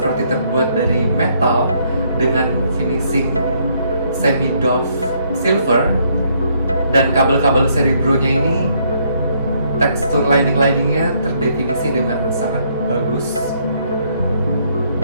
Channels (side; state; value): both; inverted; correlation -0.70